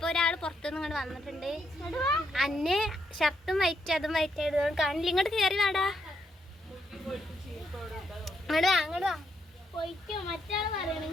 ഒരാൾ പുറത്തുനിന്ന് ഇങ്ങോട്ട് വന്നിട്ടുണ്ട്. അന്നെ ഷർട്ടും വൈറ്റ് അതും വൈറ്റ് ആയിട്ട് കാണില്ല. ഇങ്ങോട്ട് കയറി വാടാ, അങ്ങോട്ട് വാ. പോയി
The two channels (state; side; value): normal; both; correlation 0.77